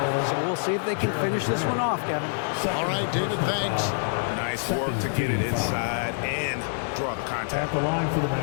So we'll see if they can finish this one off, Kevin. All right, David, thanks. Nice work to get it inside and draw the contact. At the line for the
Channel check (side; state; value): right; silent; 57 dB below the other